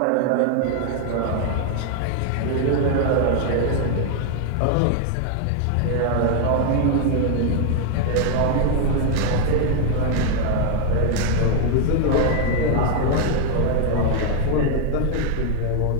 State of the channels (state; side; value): different; both; correlation 0.00